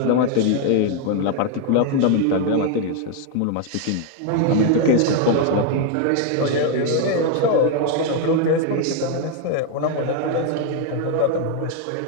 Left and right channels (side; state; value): both; different; correlation 0.01